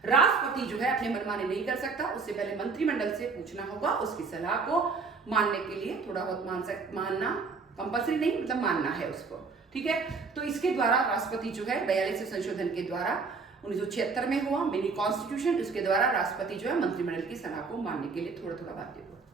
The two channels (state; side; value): quieter; left; 4.7 dB